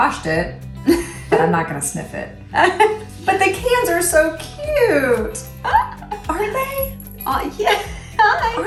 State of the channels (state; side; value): identical; both; correlation 1.00